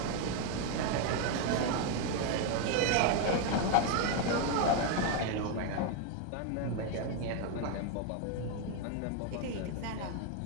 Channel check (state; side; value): different; both; correlation 0.01